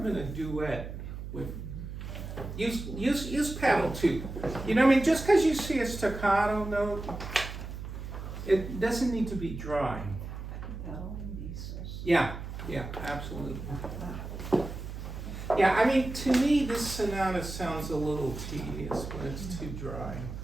in a duet with. Use pedal too. You know what I mean? Just because you see a staccato note, it doesn't need to be dry. Yeah, absolutely. Yeah, I mean, to me, this sonata sounds a little tedious when it's too dry.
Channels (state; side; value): noise; right; hum, 8 dB below the sound